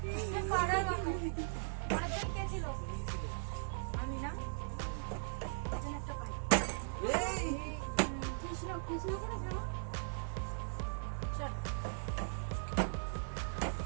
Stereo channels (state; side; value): silent; left; digital silence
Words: পরের জন কে ছিল? আমি না, একজন একটা পাই। এই কৃষ্ণ করে যাও। চল।